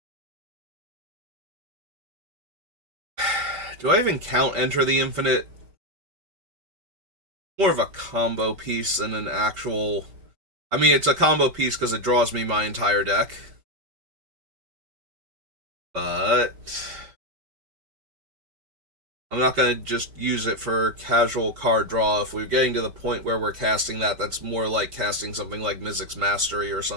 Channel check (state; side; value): late; left; 5.1 ms